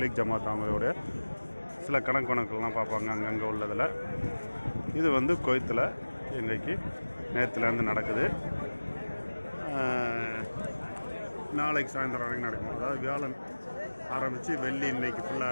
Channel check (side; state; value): both; inverted; correlation -1.00